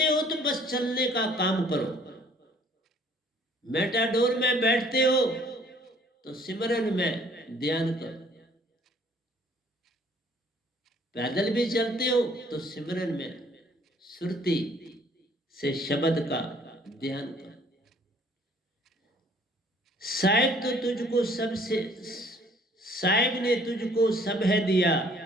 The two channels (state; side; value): normal; both; correlation 0.58